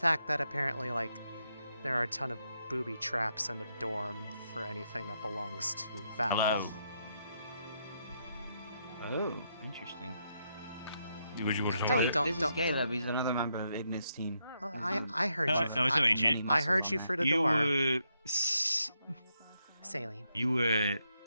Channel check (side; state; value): both; inverted; correlation -0.80